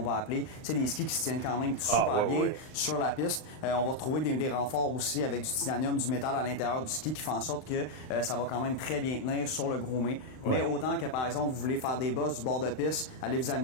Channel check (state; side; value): late; right; 39 ms